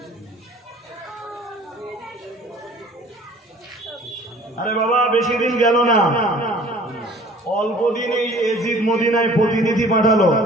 আরে বাবা বেশি দিন গেল না, অল্প দিনেই এজিদ মদিনায় প্রতিনিধি পাঠালো।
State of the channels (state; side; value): normal; both; correlation 0.50